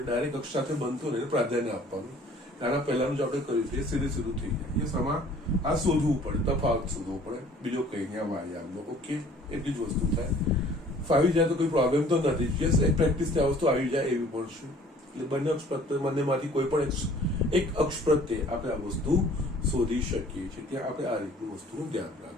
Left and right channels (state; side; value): normal; both; correlation 0.53